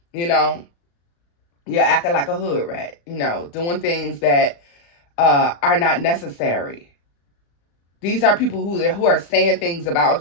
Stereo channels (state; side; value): late; right; 35 ms